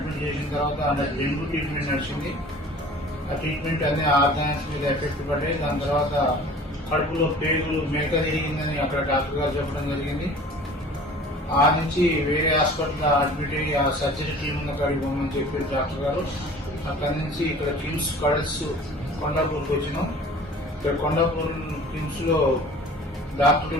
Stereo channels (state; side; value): normal; both; correlation 0.45